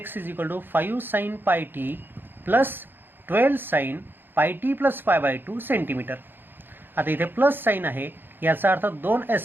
is equal to 5 sine pi T plus 12 sine pi T plus pi by 2 centimetre. आता इथे प्लस साईन आहे याचा अर्थ दोन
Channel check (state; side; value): late; left; 0.097 ms